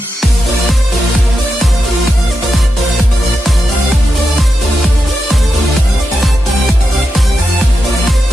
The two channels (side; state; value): both; normal; correlation 0.87